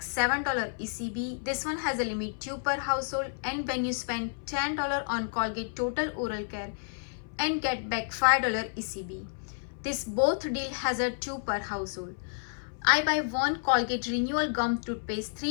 $7 ECB, this one has a limit 2 per household. And when you spend $10 on Colgate Total Oral Care and get back $5 ECB, this both deal has a 2 per household. I buy one Colgate Renewal Gum Toothpaste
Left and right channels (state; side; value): silent; right; 58 dB below the other